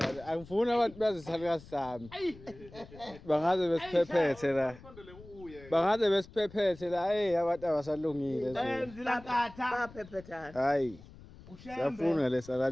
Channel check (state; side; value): noise; left; rumble, 19 dB below the sound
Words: Angifuni abantu bazisala sami. Bangaze besiphephethe la. Sondele uye. Bangaze besiphephethe la. Hey abantu abasalungile nje. Enzila nkatha. Baphephethana. Hayi. Siyafuna